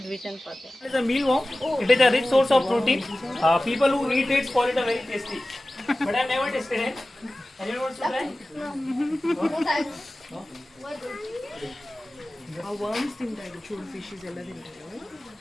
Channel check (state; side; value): normal; both; correlation 0.96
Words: vision for them. It is a mealworm. It is a rich source of protein. People who eat it call it a very tasty. But I have never tasted it. Anyone wants to try? ಆ worms ತಿಂತಾರೆ ಚೂರು fishes ಎಲ್ಲ ತಿಂತಾರೆ